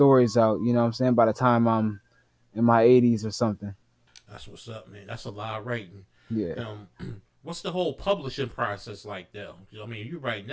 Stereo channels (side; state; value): both; identical; correlation 1.00